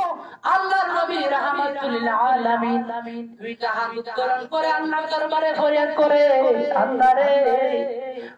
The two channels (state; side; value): identical; both; correlation 1.00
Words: আল্লাহর নবী রাহমাতুল আলামিন দুইটা হাত উত্তোলন করে আল্লাহর দরবারে ফরিয়াদ করে আল্লাহ রে